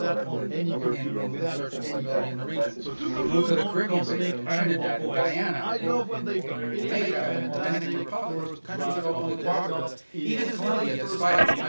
in search of stability in the region. We move to the Caribbean basin, Trinidad, and Guyana, Jamaica, and Dominican Republic, countries that openly cooperate with us. Even Colombia, despite its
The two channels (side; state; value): both; inverted; correlation -1.00